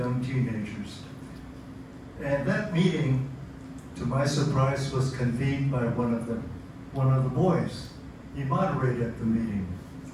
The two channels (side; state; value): both; identical; correlation 1.00